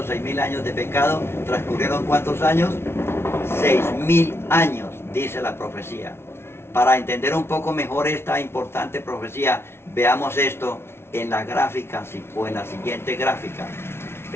6.000 años de pecado, transcurrieron ¿cuántos años? 6.000 años, dice la profecía. Para entender un poco mejor esta importante profecía, veamos esto en la gráfica o en la siguiente gráfica.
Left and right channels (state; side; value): late; right; 0.12 ms